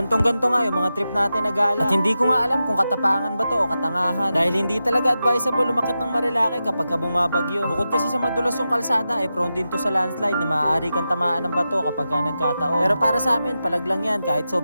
nga yung mga trip natin na gala. At hindi ko nga alam kung katapangan ba to o katangahan. Dahil hindi talaga advisable umakyat ng Marilake kapag bumabagyo. Bukod kasi sa madulas yung kalsada, prone din to sa landslide na maaari kang tamaan ng bato kapag nagkataon. Pero para sa amin, palaglang yan kahit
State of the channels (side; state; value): both; inverted; correlation -0.91